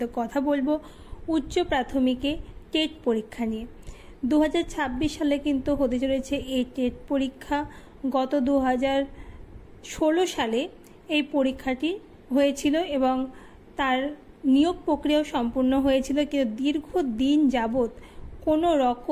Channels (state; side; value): identical; both; correlation 1.00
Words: কথা বলবো উচ্চ প্রাথমিকে টেট পরীক্ষা নিয়ে। 2026 সালে কিন্তু হতে চলেছে এই টেট পরীক্ষা। গত 2016 সালে এই পরীক্ষাটি হয়েছিল এবং তার নিয়োগ প্রক্রিয়া সম্পূর্ণ হয়েছিল, কিন্তু দীর্ঘদিন যাবত কোনো